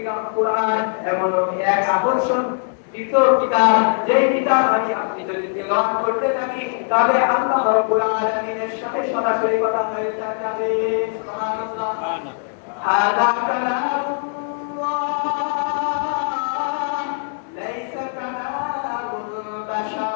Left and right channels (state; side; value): silent; right; 65 dB below the other